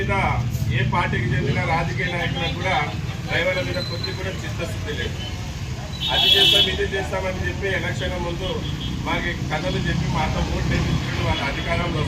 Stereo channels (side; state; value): both; identical; correlation 1.00